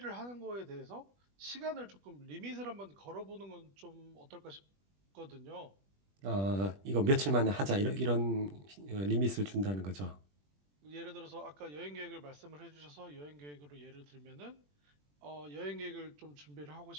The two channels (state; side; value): late; left; 21 ms